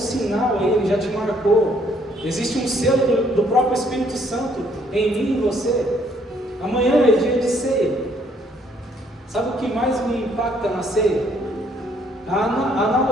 aí, ele já te marcou. Existe um selo do próprio Espírito Santo em mim e em você. Amanhã é dia de ceia. Sabe o que mais me impacta na ceia? A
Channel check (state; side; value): normal; both; correlation 0.66